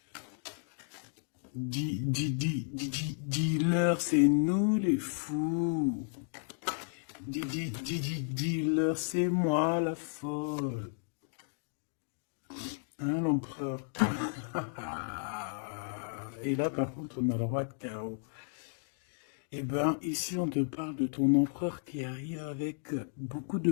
Dis-leur, c'est nous les fous. Dis-leur, c'est moi la folle. Hein, l'empereur? Et là, par contre, on a le roi de carreau. Eh ben, ici, on te parle de ton empereur qui arrive avec beaucoup de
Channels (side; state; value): right; silent; digital silence